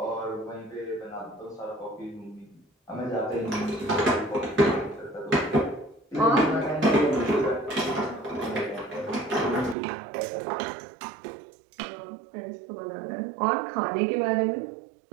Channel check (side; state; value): left; drops out; at 9.8 s